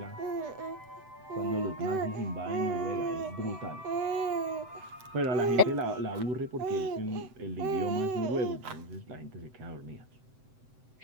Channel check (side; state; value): left; late; 7.8 ms